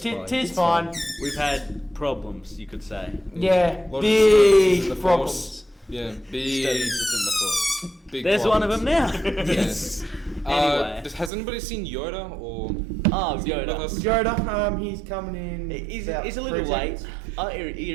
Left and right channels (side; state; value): left; drops out; at 11.3 s